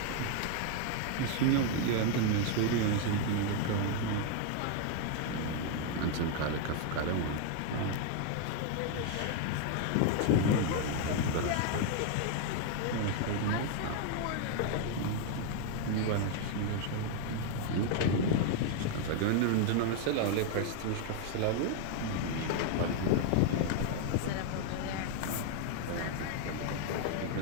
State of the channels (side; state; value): both; different; correlation 0.00